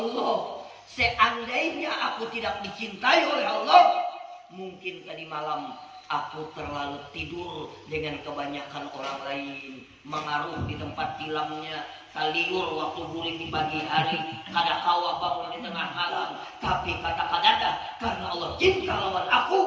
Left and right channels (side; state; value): both; identical; correlation 1.00